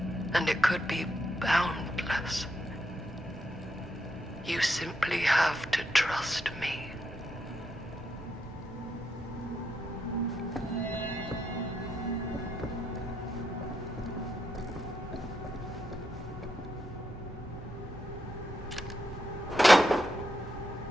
And it could be boundless. You simply have to trust me.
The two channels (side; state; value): both; normal; correlation 0.81